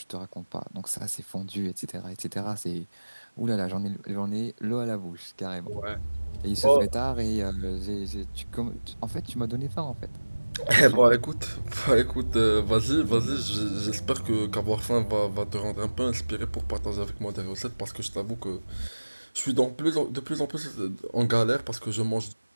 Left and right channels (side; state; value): both; inverted; correlation -1.00